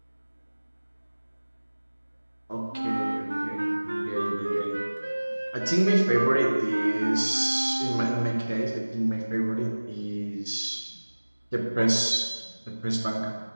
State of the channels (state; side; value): inverted; both; correlation -1.00